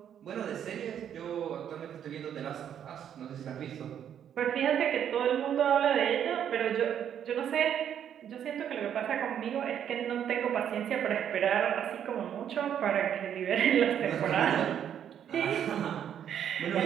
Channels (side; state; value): left; quieter; 9.3 dB